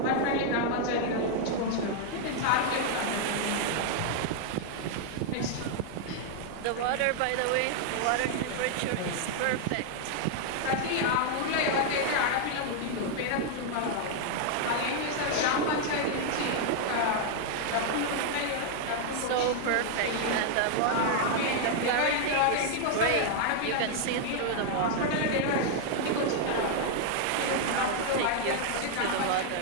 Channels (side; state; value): both; different; correlation 0.00